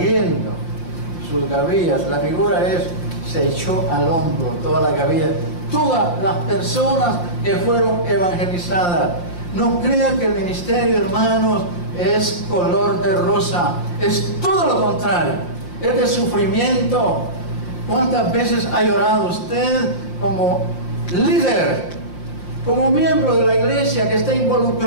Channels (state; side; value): late; right; 5.7 ms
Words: sus gavillas. La figura es, se echó al hombro toda la gavilla. Todas las personas que fueron evangelizadas. No crean que el ministerio, hermanos, es color de rosa. Es todo lo contrario. Es de sufrimiento. ¿Cuántas veces ha llorado usted como líder, como miembro de la iglesia que está